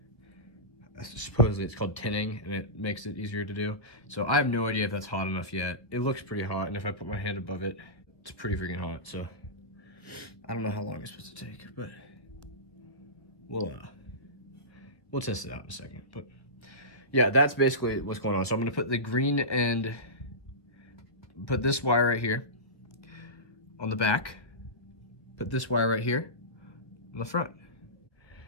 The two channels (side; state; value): right; late; 1.4 ms